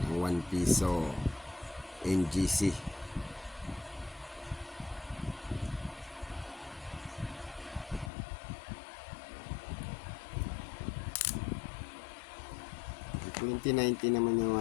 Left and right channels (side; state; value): right; drops out; at 8.1 s